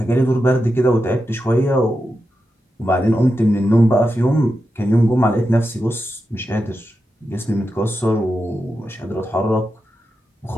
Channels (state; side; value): normal; both; correlation 0.89